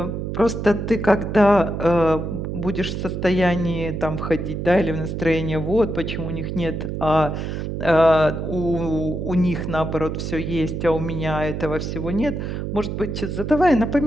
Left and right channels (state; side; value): noise; right; hum, 4 dB below the sound